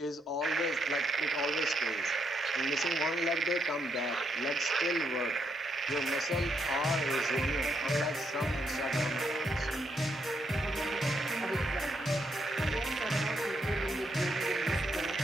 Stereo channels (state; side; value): normal; both; correlation 0.77